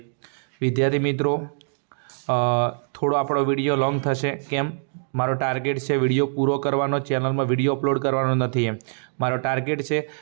વિદ્યાર્થી મિત્રો, થોડો આપણો વિડીયો લોંગ થશે, કેમ? મારો ટાર્ગેટ છે વિડીયો પૂરો કરવાનો, ચેનલમાં વિડીયો અપલોડ કરવાનો નથી। એમ મારો ટાર્ગેટ છે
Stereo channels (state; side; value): silent; left; digital silence